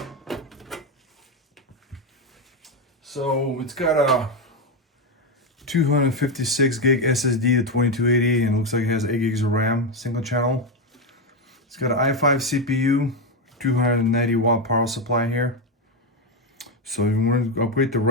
So it's got a 256 gig SSD to 2280, and it looks like it has 8 gigs of RAM, single channel. It's got an i5 CPU, 290 watt power supply here. So if you want to upgrade the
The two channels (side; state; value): both; normal; correlation 0.08